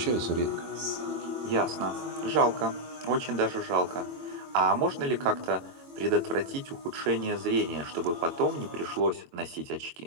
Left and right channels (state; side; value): late; left; 22 ms